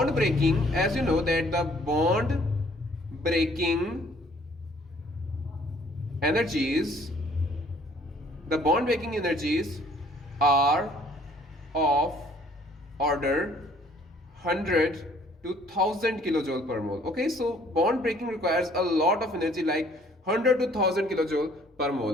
breaking, as you know that the bond breaking energies are of order 100 to 1000 kilojoule per mole. Okay, so bond breaking requires a lot of energy, like 100 to 1000 kilojoule per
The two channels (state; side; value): normal; both; correlation 0.59